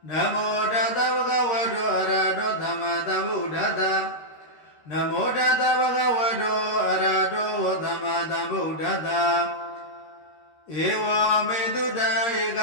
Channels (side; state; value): right; late; 13 ms